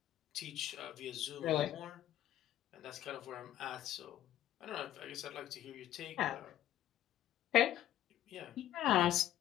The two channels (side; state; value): right; quieter; 12.5 dB